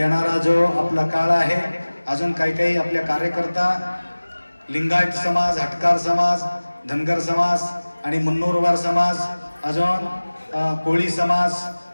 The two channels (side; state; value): both; inverted; correlation -1.00